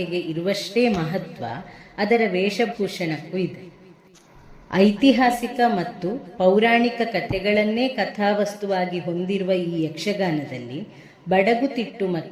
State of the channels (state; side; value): identical; both; correlation 1.00